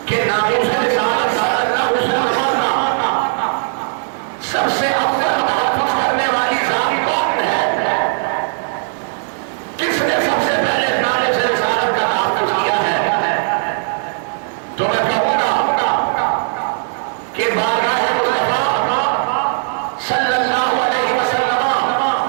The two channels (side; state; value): left; silent; digital silence